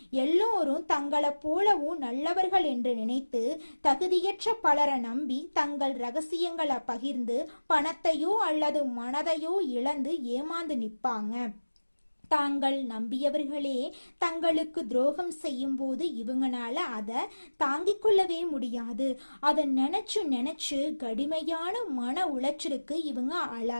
எல்லோரும் தங்களை போலவும் நல்லவர்கள் என்று நினைத்து தகுதியற்ற பலரை நம்பி தங்கள் ரகசியங்களை பகிர்ந்து பணத்தையோ அல்லது மனதையோ இழந்து ஏமாந்து நிற்பாங்க. தாங்கள் நம்பியவர்களே தங்களுக்கு துரோகம் செய்யும் போது இவங்கனால அதை தாங்கிக் கொள்ளவே முடியாது. அதை நினைச்சு கடுமையான மன உளைச்சலுக்கு இவங்க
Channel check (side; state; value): both; inverted; correlation -1.00